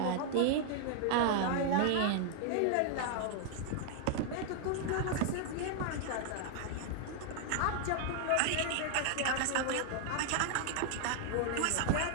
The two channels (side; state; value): both; different; correlation 0.00